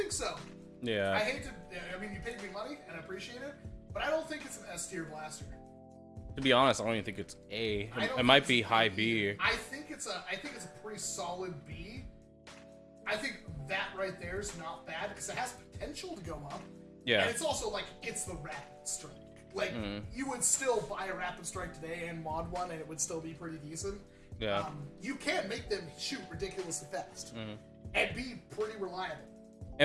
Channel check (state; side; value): identical; both; correlation 1.00